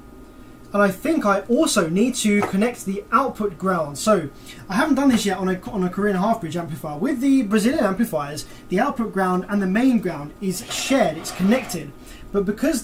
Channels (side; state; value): both; identical; correlation 1.00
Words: And I think I also need to connect the output ground. So I haven't done this yet on a Korean half-bridge amplifier. With the Brazilian amplifiers, the output ground and the main ground is shared, it's connected. But because